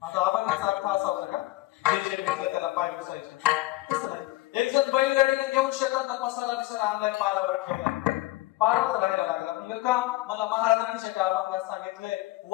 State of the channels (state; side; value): quieter; right; 18.7 dB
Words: आता अभंगाचा अर्थ असा बरं का, जे जे भेटलं त्याला पाय पुसायचे. एक जण बैलगाडीने घेऊन शेतात मसाला बिसाला आणलाय, पारावर ठेवला, पारावर राहायला लागला. म्हणजे का मला महाराजांनी त्या अभंगात सांगितलंय,